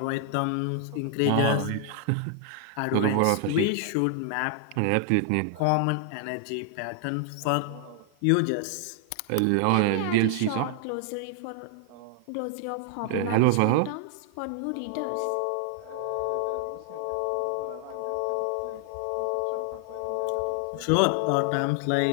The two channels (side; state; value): both; different; correlation 0.00